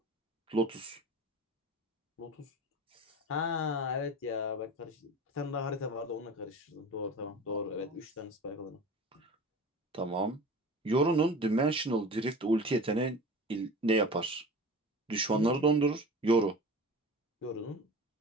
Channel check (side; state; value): both; normal; correlation 0.37